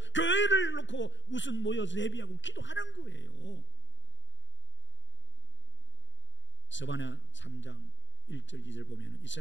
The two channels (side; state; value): right; late; 0.54 ms